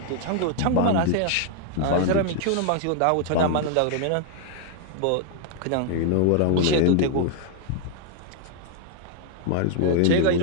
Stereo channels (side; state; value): both; different; correlation 0.00